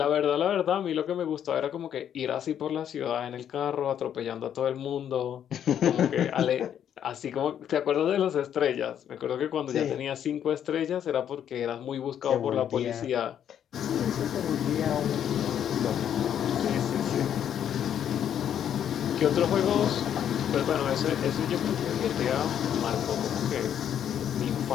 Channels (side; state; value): right; quieter; 9.5 dB